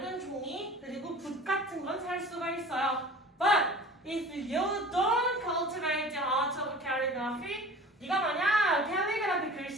종이 그리고 붓 같은 건 살 수가 있어요. But if you don't cultivate the art of calligraphy, 네가 만약 캘리그라피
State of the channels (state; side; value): normal; both; correlation 0.42